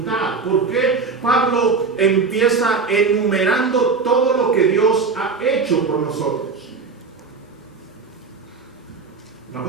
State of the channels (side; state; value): left; quieter; 4.6 dB